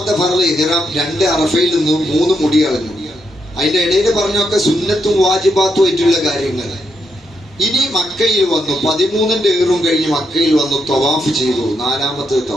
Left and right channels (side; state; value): both; normal; correlation 0.80